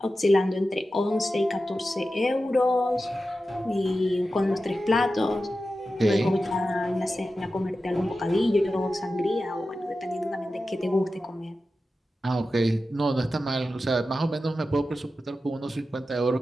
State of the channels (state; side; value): normal; both; correlation 0.92